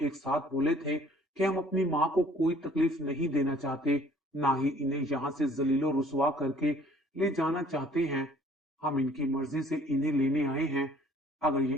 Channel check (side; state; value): both; normal; correlation 0.56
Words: एक साथ बोले थे कि हम अपनी माँ को कोई तकलीफ नहीं देना चाहते, ना ही इन्हें यहाँ से जलीलो रुसवा करके ले जाना चाहते हैं। हम इनकी मर्जी से इन्हें लेने आए हैं। अगर ये